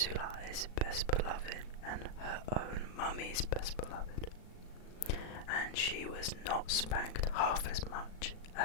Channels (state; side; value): late; right; 37 ms